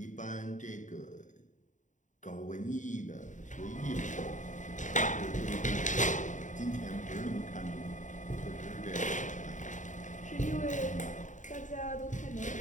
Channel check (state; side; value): late; right; 0.36 ms